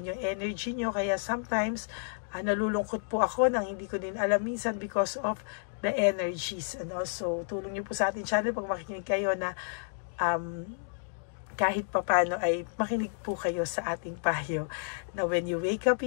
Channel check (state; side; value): silent; right; digital silence